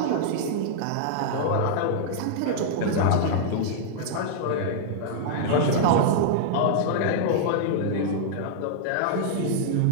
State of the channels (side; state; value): both; different; correlation -0.02